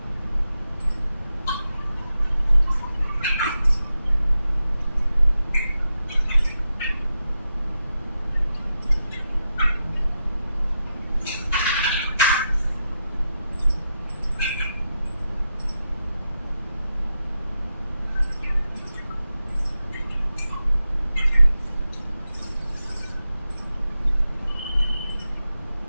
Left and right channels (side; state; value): both; inverted; correlation -0.88